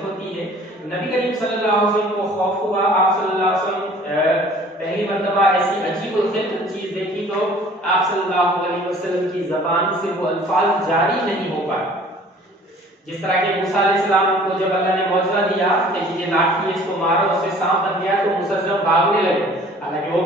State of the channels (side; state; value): both; normal; correlation 0.51